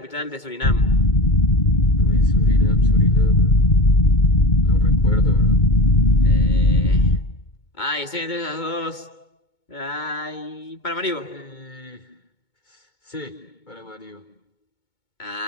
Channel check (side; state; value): right; late; 2.2 ms